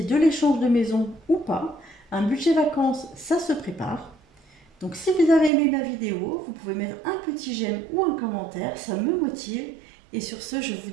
de l'échange de maison ou pas, un budget vacances, ça se prépare. Donc si vous avez aimé ma vidéo, vous pouvez mettre un petit j'aime ou un commentaire, ça me motive. Et sur ce, je vous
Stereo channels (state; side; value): drops out; left; at 5.5 s